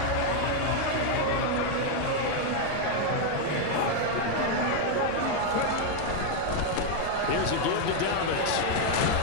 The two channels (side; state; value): both; different; correlation 0.01